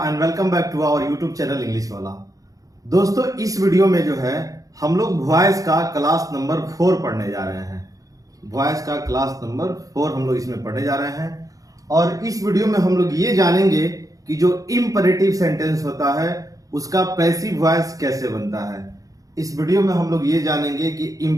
and welcome back to our YouTube channel English Wala. दोस्तों, इस video में जो है हम लोग वॉइस का क्लास नंबर 4 पढ़ने जा रहे हैं। वॉइस का क्लास नंबर 4 हम लोग इसमें पढ़ने जा रहे हैं और इस वीडियो में हम लोग ये जानेंगे कि जो इंपरेटिव सेंटेंस होता है उसका पैसिव वॉइस कैसे बनता है। इस वीडियो में हम लोग ये जानेंगे कि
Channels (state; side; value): late; left; 0.17 ms